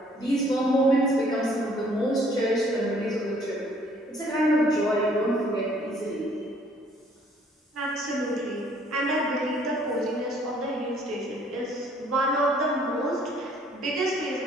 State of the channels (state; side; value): normal; both; correlation 0.61